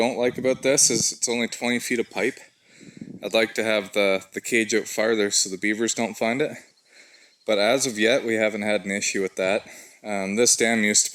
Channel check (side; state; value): both; identical; correlation 1.00